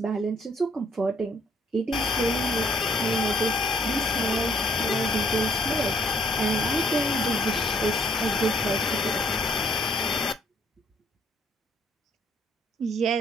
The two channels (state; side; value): normal; both; correlation 0.63